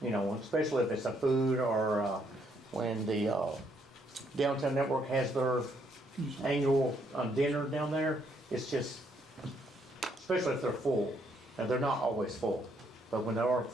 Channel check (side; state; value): both; normal; correlation 0.71